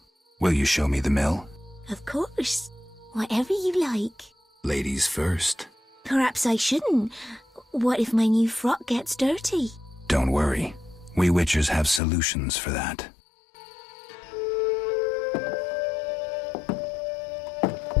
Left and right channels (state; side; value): drops out; right; at 12.0 s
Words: Will you show me the mill? Of course. Whatever you like. Ladies first. Perhaps I shouldn't. What if my new frock gets dirty? Don't worry. We witchers have solutions for that.